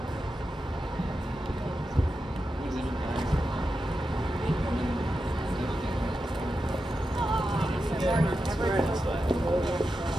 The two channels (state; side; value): normal; both; correlation 0.89